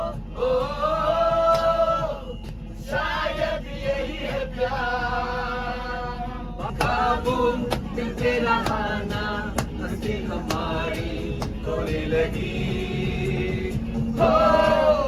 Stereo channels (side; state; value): both; identical; correlation 1.00